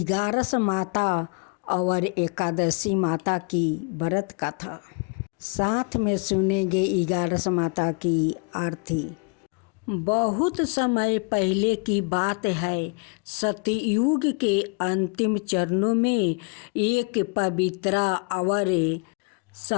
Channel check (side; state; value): right; quieter; 33.1 dB